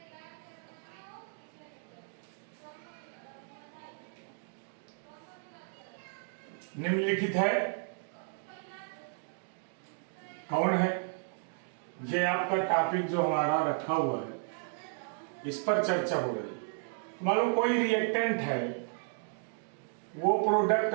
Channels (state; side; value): silent; left; 55 dB below the other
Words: निम्नलिखित है कौन है? ये आपका टॉपिक जो हमारा रखा हुआ है, इस पर चर्चा हो रही है। मान लो कोई रिएक्टेंट है, वो प्रोडक्ट